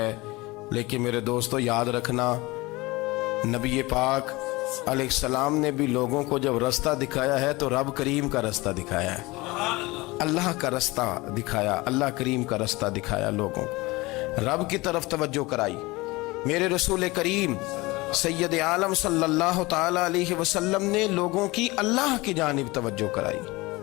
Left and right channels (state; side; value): quieter; right; 22.1 dB